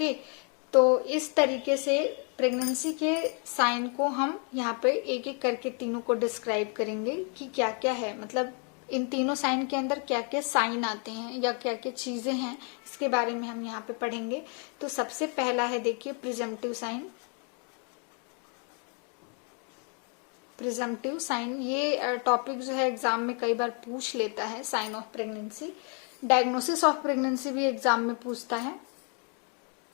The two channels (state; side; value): quieter; right; 38.8 dB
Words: तो इस तरीके से प्रेगनेंसी के साइन को हम यहाँ पे एक एक करके तीनों को डिस्क्राइब करेंगे कि क्या क्या है, मतलब इन तीनों साइन के अंदर क्या क्या साइन आते हैं या क्या क्या चीजें हैं, इसके बारे में हम यहाँ पे पढ़ेंगे। तो सबसे पहला है, देखिए, प्रिजम्पटिव साइन। प्रिजम्पटिव साइन ये टॉपिक जो है एग्जाम में कई बार पूछ लेता है। Sign of pregnancy, diagnosis of pregnancy भी एग्जाम में पूछता है।